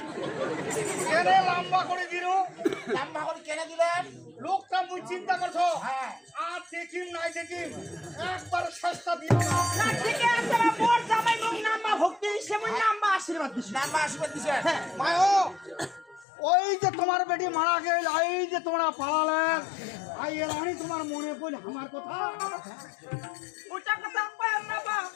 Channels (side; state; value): right; drops out; at 16.2 s